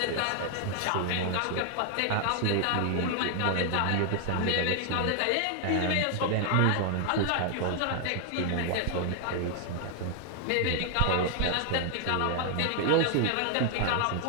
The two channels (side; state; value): both; different; correlation 0.00